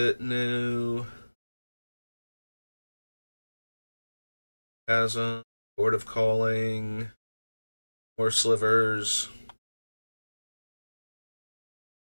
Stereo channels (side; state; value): both; inverted; correlation -1.00